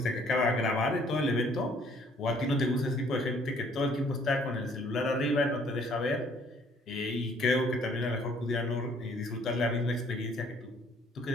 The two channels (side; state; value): both; normal; correlation 0.61